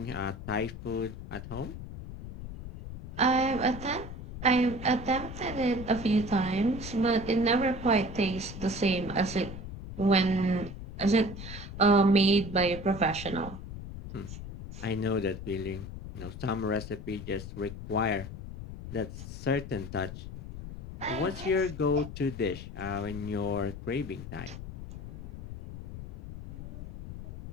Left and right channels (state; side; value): noise; left; rumble, 10 dB below the sound